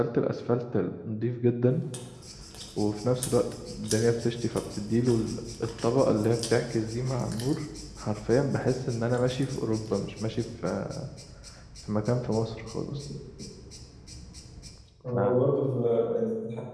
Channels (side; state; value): both; identical; correlation 1.00